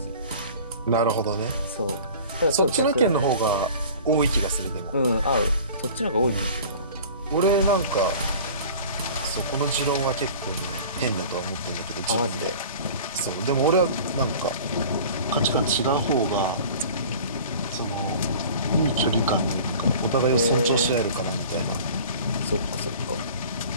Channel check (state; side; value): inverted; both; correlation -0.42